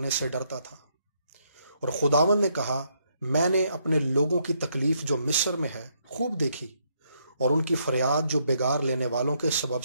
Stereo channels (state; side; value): inverted; both; correlation -0.74